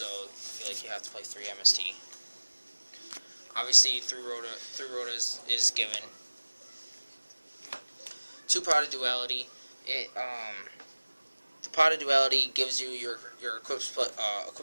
I feel like you have to play 3 MST. Obviously, 3 Rhoda is given. 2 Pot of Duality. The Pot of Duality gives you your equip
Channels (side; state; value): both; inverted; correlation -1.00